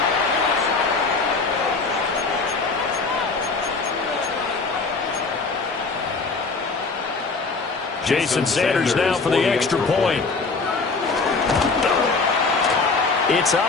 Jason Sanders now for the extra point. It's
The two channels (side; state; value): right; quieter; 4.1 dB